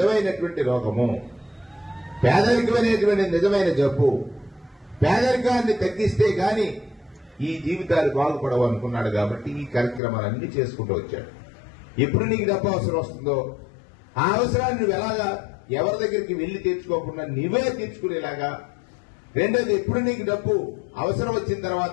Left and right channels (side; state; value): right; drops out; at 10.0 s